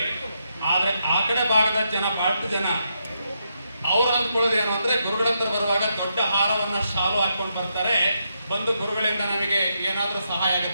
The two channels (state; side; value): inverted; both; correlation -0.81